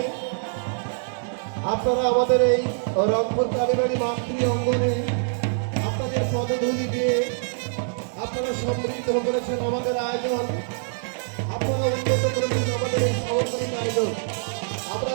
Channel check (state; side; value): silent; left; digital silence